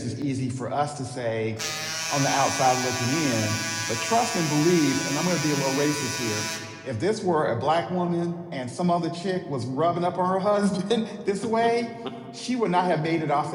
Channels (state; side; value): identical; both; correlation 1.00